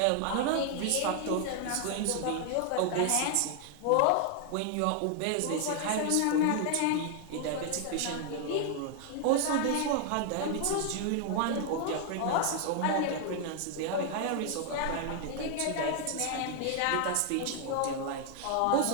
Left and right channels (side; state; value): both; different; correlation 0.00